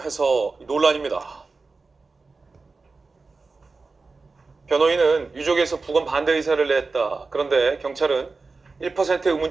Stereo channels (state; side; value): quieter; left; 4.0 dB